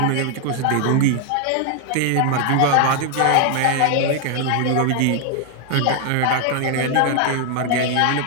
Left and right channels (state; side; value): different; both; correlation 0.00